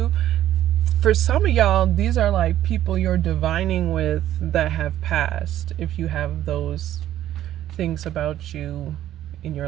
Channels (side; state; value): left; quieter; 12.5 dB